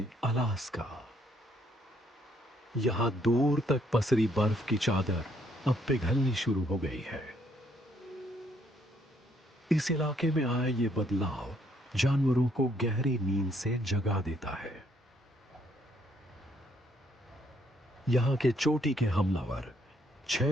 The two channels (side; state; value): both; normal; correlation 0.69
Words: अलास्का। यहां दूर तक पसरी बर्फ की चादर अब पिघलनी शुरू हो गई है। इस इलाके में आया ये बदलाव जानवरों को गहरी नींद से जगा देता है। यहां के चोटी के हमलावर